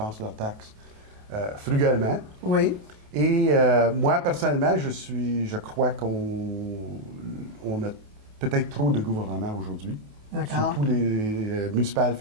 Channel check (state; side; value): late; left; 28 ms